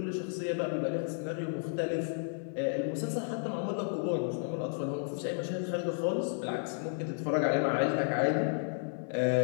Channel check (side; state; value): right; silent; 56 dB below the other